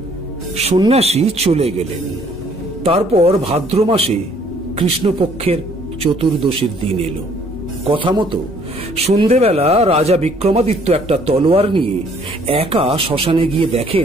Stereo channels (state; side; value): normal; both; correlation 0.61